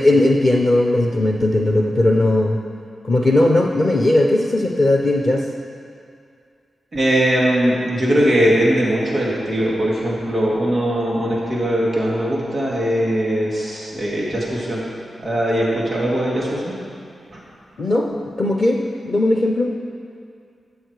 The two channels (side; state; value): both; normal; correlation 0.90